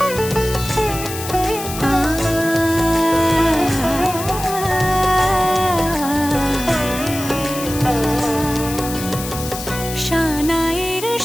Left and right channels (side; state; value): left; noise; hiss, 9 dB below the sound